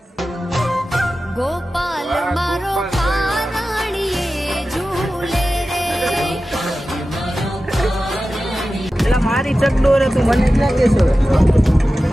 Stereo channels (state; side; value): normal; both; correlation 0.94